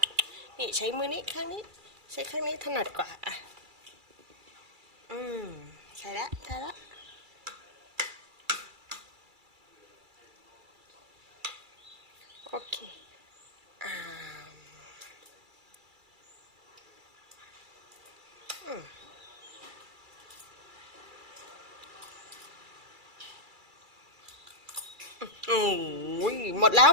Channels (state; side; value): late; left; 2.3 ms